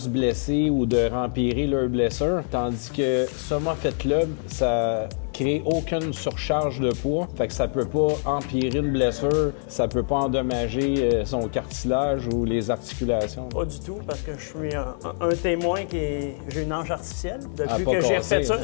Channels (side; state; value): right; silent; digital silence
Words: blesser ou de rempirer leurs blessures. Tandis que Soma Fit Club, ça crée aucune surcharge de poids. Fait que ça peut pas empirer une blessure, ça peut pas endommager son cartilage ou les articulations. Pas du tout, parce que je suis un témoin j'ai une hanche artificielle depuis que j'ai refait ça.